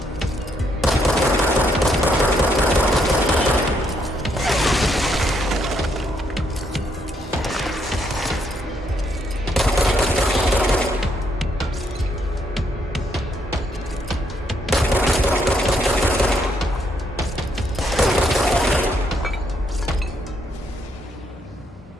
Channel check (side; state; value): both; normal; correlation 0.74